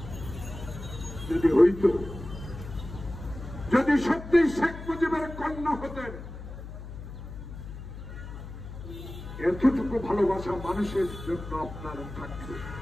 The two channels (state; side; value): noise; left; hum, 11 dB below the sound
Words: যদি হইত, যদি সত্যি শেখ মুজিবের কন্যা হতেন, এতটুকু ভালোবাসা মানুষের জন্য আপনার থাকবে।